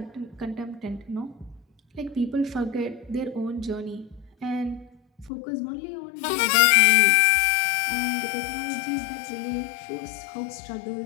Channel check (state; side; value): drops out; right; at 5.3 s